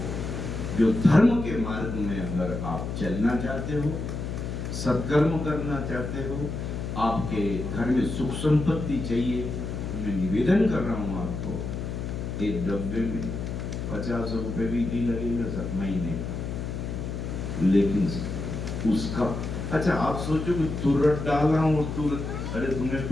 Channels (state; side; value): noise; left; hum, 4 dB below the sound